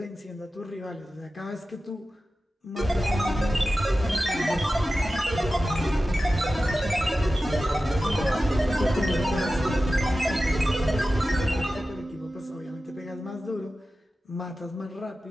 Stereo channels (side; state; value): both; normal; correlation 0.94